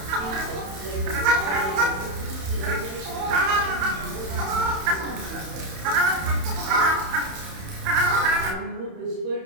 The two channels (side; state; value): left; late; 31 ms